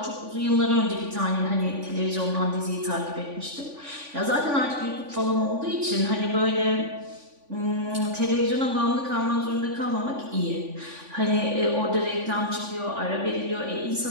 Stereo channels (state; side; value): late; left; 3.5 ms